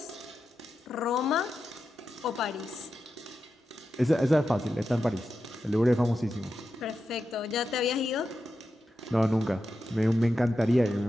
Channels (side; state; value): both; normal; correlation 0.89